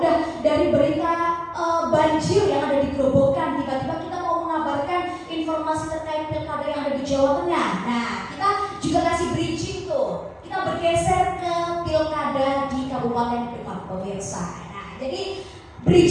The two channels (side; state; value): both; identical; correlation 1.00